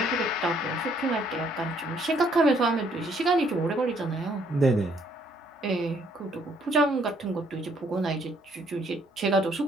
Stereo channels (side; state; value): both; normal; correlation 0.66